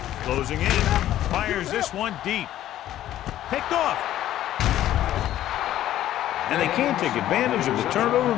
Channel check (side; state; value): right; quieter; 12.8 dB